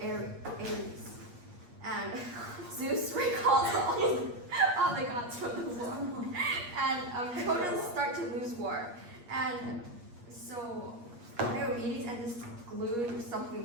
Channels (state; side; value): late; left; 8.4 ms